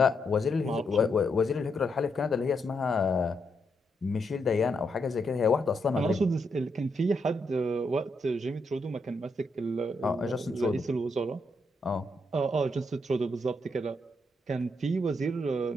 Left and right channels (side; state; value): both; normal; correlation 0.79